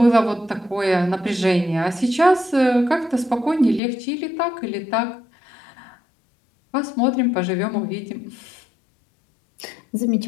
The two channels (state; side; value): drops out; right; at 3.8 s